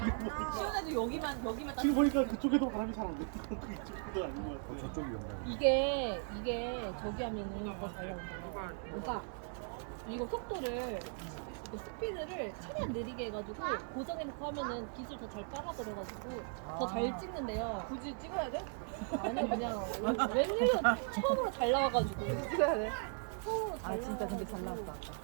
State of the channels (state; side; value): silent; left; 53 dB below the other